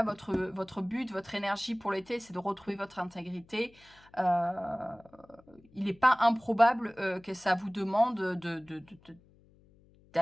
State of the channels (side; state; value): left; noise; hum, 28 dB below the sound